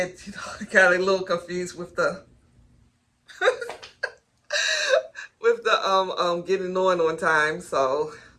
I got a little confused with the with the getting on time. So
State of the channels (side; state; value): both; identical; correlation 1.00